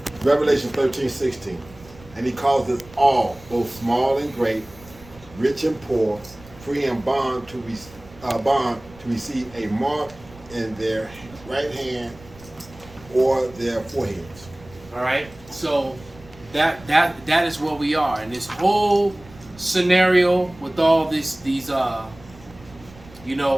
13:16. And he calls us all, both small and great, rich and poor, free and bond to receive a mark in their right hand or their foreheads. All right. So that is where we are, and this whole scenario with all these with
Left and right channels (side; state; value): right; noise; rumble, 22 dB below the sound